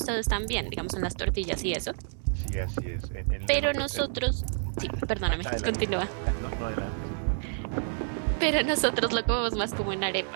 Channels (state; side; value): silent; left; digital silence